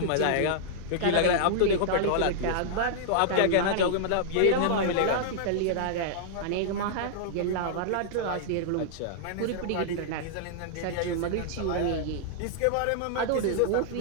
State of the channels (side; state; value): both; different; correlation -0.01